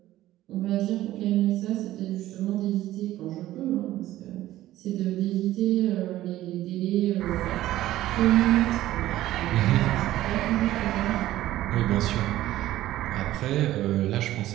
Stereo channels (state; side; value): quieter; left; 14.8 dB